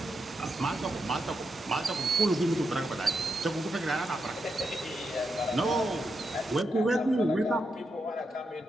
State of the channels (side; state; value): both; normal; correlation 0.84